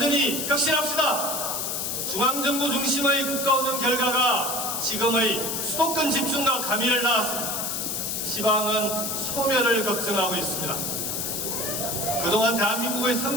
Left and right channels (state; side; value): noise; left; hiss, 2 dB below the sound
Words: 혁신합시다. 중앙정부 중심의 국가운영 결과가 지금의 수도권 집중과 가미를 낳았습니다. 지방은 소멸을 걱정하고 있습니다. 그동안 대한민국의